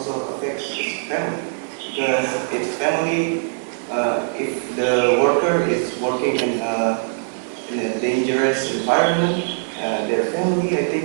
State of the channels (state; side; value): silent; left; 61 dB below the other